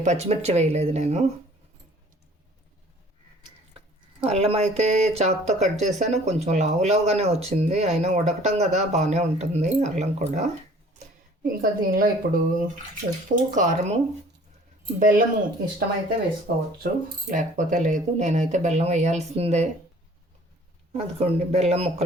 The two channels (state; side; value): normal; both; correlation 0.52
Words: పచ్చిమిర్చి వేయలేదు నేను. అల్లం అయితే చాకుతో కట్ చేశాను, కొంచెం లావుగానే వచ్చింది, అయినా ఉడకటం కదా బాగానే ఉంటుంది అల్లం కూడా. ఇంకా దీనిలో ఇప్పుడు ఉప్పు, కారము, బెల్లము ఇష్టమైతే వేసుకోవచ్చు, లేకపోతే లేదు. నేనైతే బెల్లం వేయాల్సిందే. అదిగోండి బెల్లం